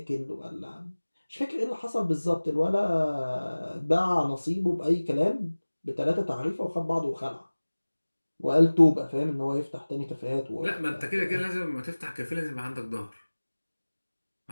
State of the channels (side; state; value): both; inverted; correlation -1.00